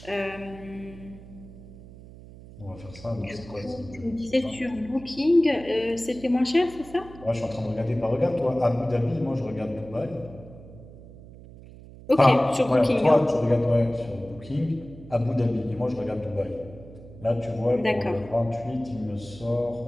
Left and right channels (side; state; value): right; noise; hum, 18 dB below the sound